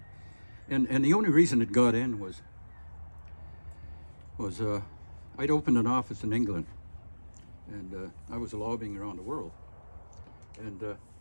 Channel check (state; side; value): inverted; both; correlation -1.00